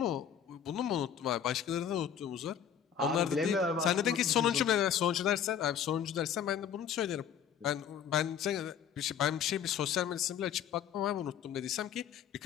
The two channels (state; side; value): quieter; right; 8.6 dB